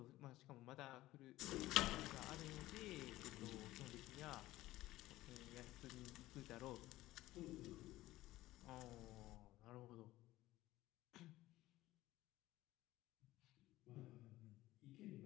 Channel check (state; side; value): quieter; right; 16.7 dB